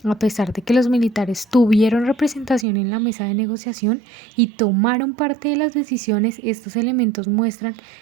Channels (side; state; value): left; drops out; at 2.7 s